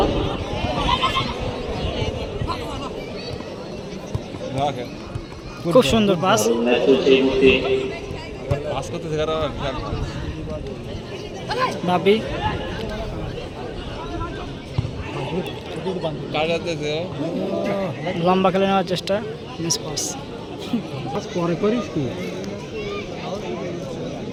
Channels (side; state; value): both; identical; correlation 1.00